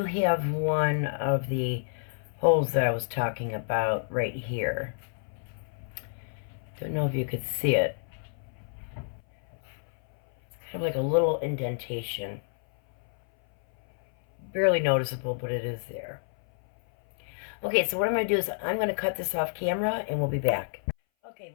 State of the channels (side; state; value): right; silent; 58 dB below the other